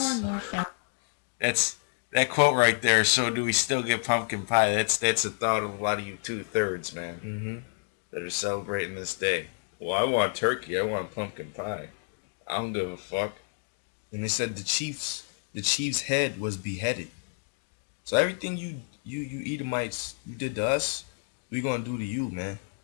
and more frequent. That's that quote right there. So do we still get pumpkin pie? That's the thought of a lot of you 2/3, man, that are celebrating this day. Well, I want turkey. I want pumpkin pie. I don't give a fuck. And they said the chief's head was beheaded. So everything you Edomites, you did to us, we gonna do to you, man.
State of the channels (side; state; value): right; silent; 58 dB below the other